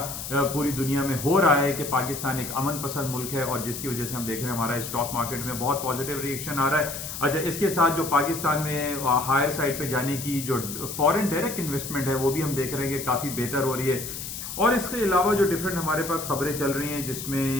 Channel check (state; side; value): noise; left; hiss, 8 dB below the sound